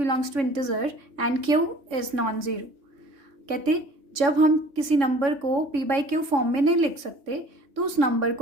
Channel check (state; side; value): late; left; 3.6 ms